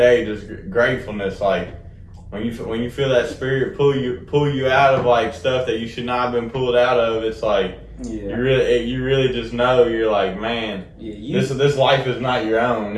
just gratefulness. Like, when you feel that spirit pull you out of like stuff that you should not have been pulled out of, it's like, you really just know, you're like, man, this life is not your own.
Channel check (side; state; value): both; identical; correlation 1.00